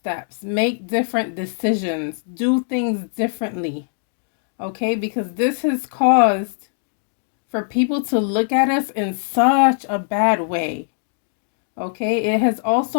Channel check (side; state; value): right; silent; digital silence